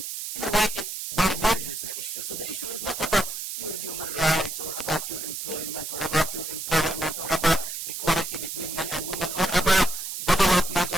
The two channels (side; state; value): right; noise; hiss, 6 dB below the sound